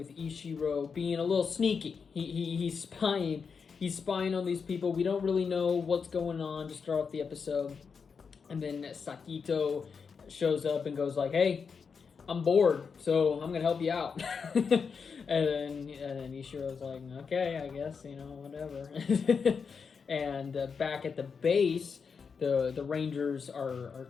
Ishiro being a little sneaky. He's spying on these people. We don't really know what's going on to start off the episode. And then Sakito shows up and goes like, "Hey, I'm bored, so I'm gonna help you out." and then Ishiro's like, "Okay, I guess, whatever." And back at the base, the Rangers are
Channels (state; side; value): quieter; right; 5.8 dB